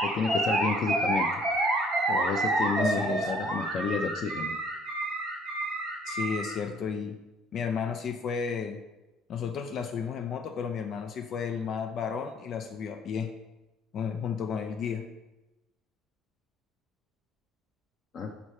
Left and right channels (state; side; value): normal; both; correlation 0.59